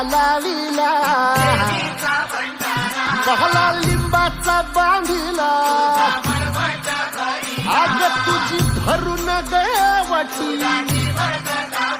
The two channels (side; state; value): both; identical; correlation 1.00